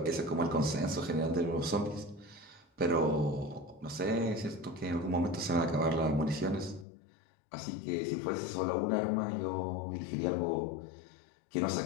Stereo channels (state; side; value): drops out; right; at 6.9 s